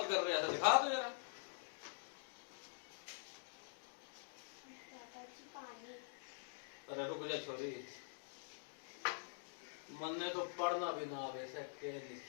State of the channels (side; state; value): right; silent; digital silence